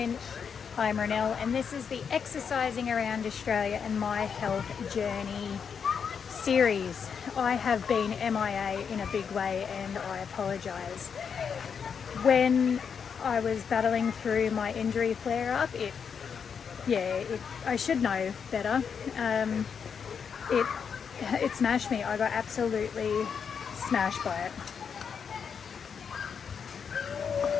I'm Ronelle and this is the Exercising Around Australia and My Health Journey series. I have been MIA in a big way and I apologise. When I was battling through my injury flare-up, I should know better. It smashed me. I got absolutely smashed by it.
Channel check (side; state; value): right; quieter; 6.7 dB